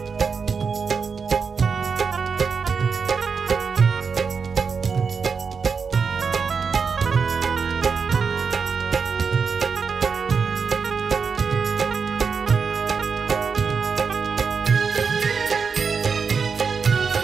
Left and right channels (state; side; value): quieter; left; 5.6 dB